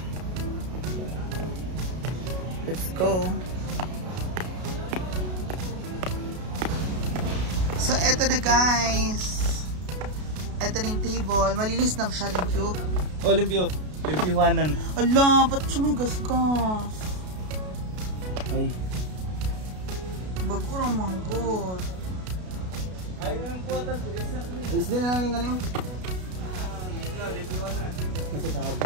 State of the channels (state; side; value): late; left; 33 ms